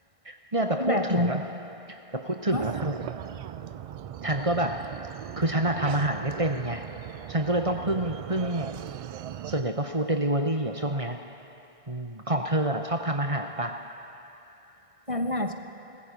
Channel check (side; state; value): left; late; 1.6 ms